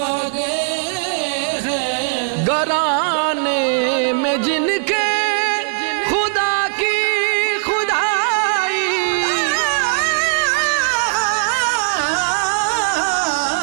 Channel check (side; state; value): left; silent; 67 dB below the other